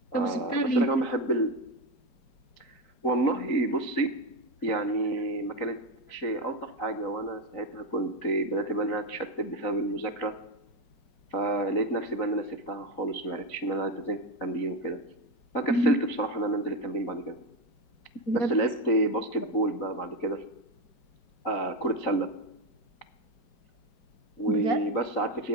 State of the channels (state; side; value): late; right; 4.0 ms